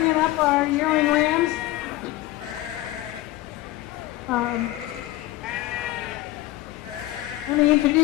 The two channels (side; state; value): right; quieter; 17.0 dB